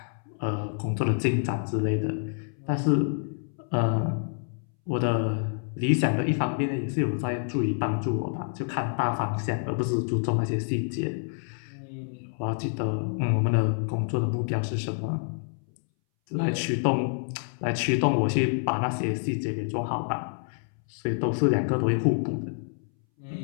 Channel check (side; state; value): right; silent; 60 dB below the other